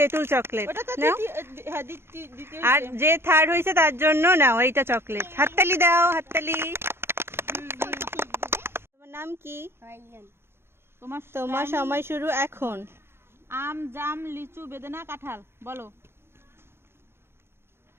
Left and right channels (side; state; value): left; late; 0.12 ms